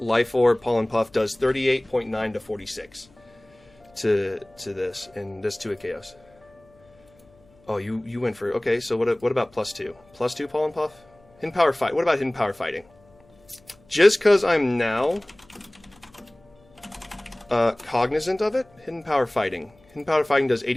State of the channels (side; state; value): left; noise; hum, 29 dB below the sound